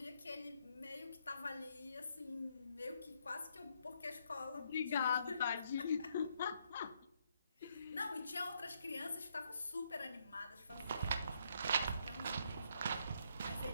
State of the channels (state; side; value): inverted; both; correlation -0.74